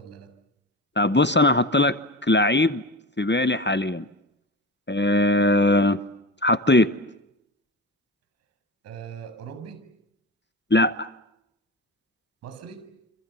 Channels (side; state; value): both; normal; correlation 0.27